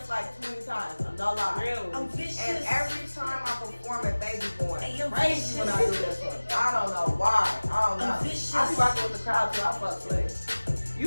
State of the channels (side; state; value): both; inverted; correlation -1.00